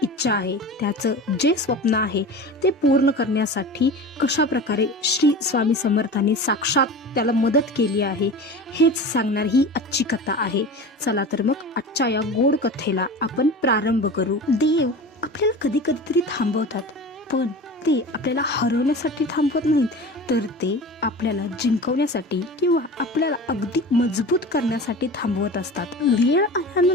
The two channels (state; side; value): normal; both; correlation 0.34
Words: इच्छा आहे, त्याचं जे स्वप्न आहे ते पूर्ण करण्यासाठी कशा प्रकारे श्री स्वामी समर्थांनी साक्षात त्याला मदत केली आहे हेच सांगणार ही आजची कथा आहे। चला तर मग आजच्या या गोड कथेला आपण प्रारंभ करू। देव आपल्याला कधी कधीतरी थांबवतात, पण ते आपल्याला हरवण्यासाठी थांबवत नाहीत, तर ते आपल्याला जिंकवण्यासाठी किंवा आपल्याला अगदी मजबूत करण्यासाठी थांबवत असतात। वेळ